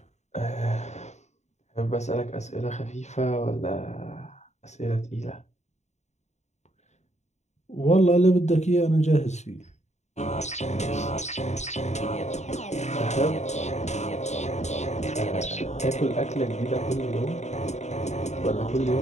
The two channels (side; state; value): right; late; 0.33 ms